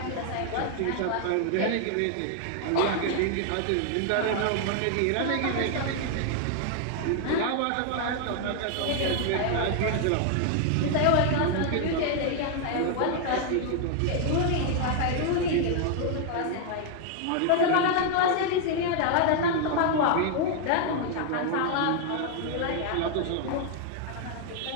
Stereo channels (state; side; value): different; both; correlation 0.00